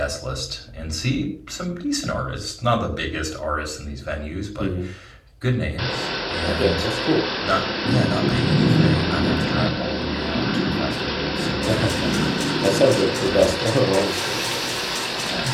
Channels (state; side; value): identical; both; correlation 1.00